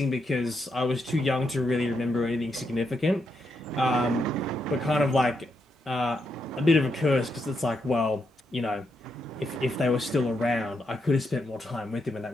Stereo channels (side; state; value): both; normal; correlation 0.81